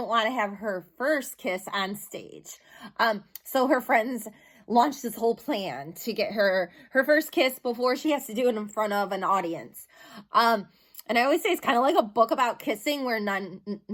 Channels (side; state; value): both; identical; correlation 1.00